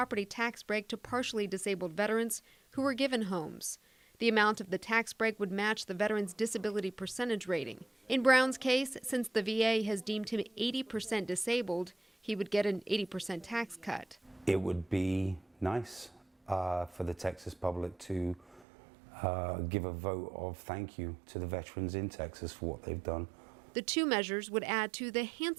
tax break to partially disabled veterans who were given homes. The amount of the tax break would match the veteran's disability percentage rating. In Brown's case, since the VA has deemed him 80% disabled, he would get an 80% tax cut. It would be nice for the Texas public to give a vote of thank you to the veterans in Texas for what they've done. The 2 measures would add to the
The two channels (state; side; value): drops out; left; at 18.7 s